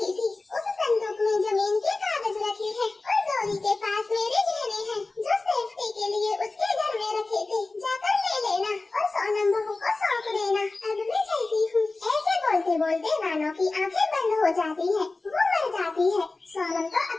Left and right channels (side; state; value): right; quieter; 3.4 dB